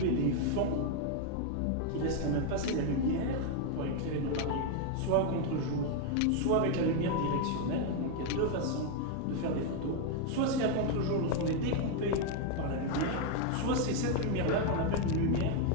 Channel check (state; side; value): different; both; correlation 0.01